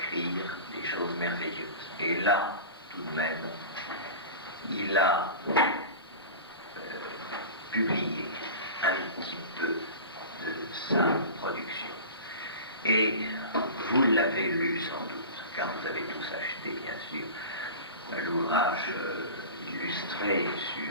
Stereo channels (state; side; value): inverted; both; correlation -0.33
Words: des choses merveilleuses. Et là, tout de même, il a publié un petit peu de sa production. Et vous l'avez lu sans doute, car vous avez tous acheté, bien sûr, l'ouvrage illustré